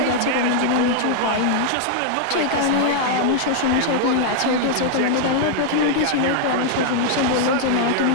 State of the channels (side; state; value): both; different; correlation 0.00